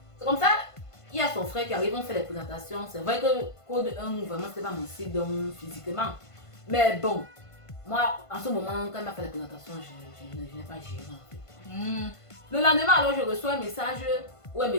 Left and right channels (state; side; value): late; right; 1.5 ms